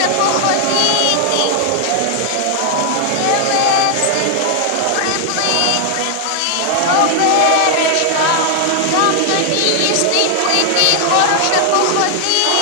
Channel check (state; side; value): different; both; correlation 0.00